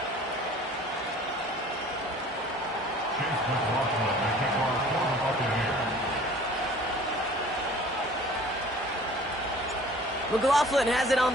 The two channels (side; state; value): both; normal; correlation 0.48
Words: McLaughlin has it on